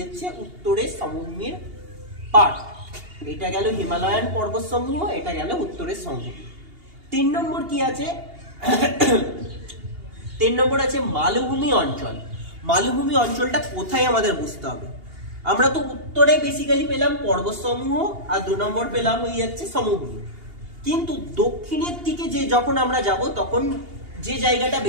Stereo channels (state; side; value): late; left; 2.8 ms